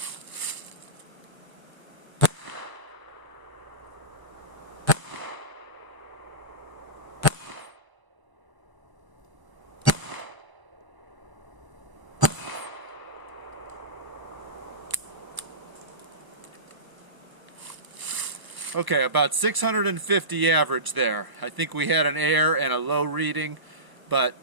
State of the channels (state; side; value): late; left; 1.0 ms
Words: Okay, about 650 average there. I think we had an air and a low reading,